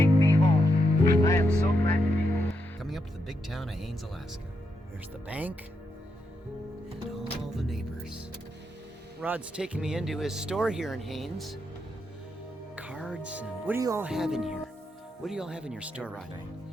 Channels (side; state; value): both; normal; correlation 0.82